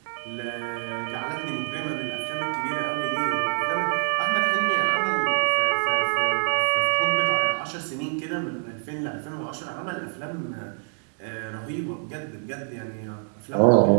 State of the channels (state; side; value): silent; left; 61 dB below the other